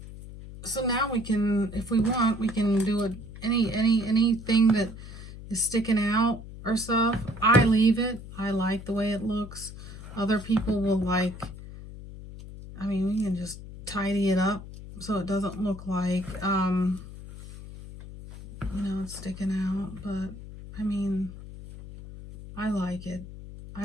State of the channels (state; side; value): noise; left; hum, 13 dB below the sound